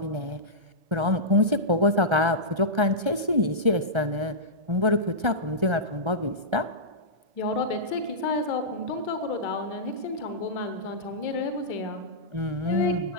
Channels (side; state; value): left; late; 1.3 ms